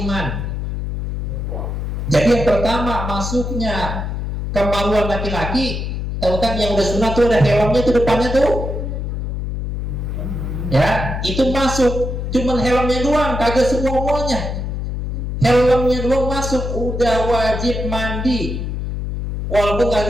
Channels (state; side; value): noise; left; hum, 3 dB below the sound